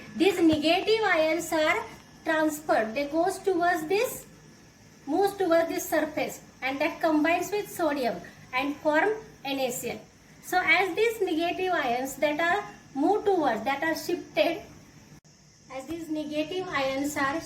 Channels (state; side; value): identical; both; correlation 1.00